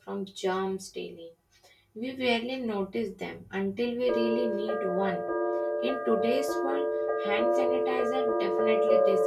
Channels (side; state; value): both; identical; correlation 1.00